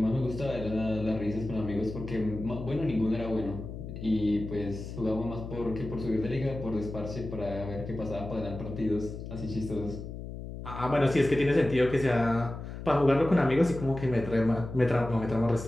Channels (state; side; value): noise; left; hum, 9 dB below the sound